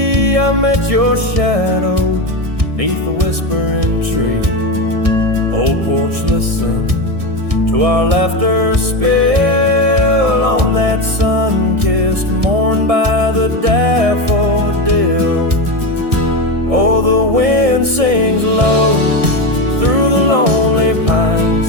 Maybe I met your shadow neath the whispering tree. Old porch, listen to our laughter spill on that sun-kissed morn by the daffodil. Oh, the wind sings low through the lonely pines,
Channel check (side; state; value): left; late; 1.6 ms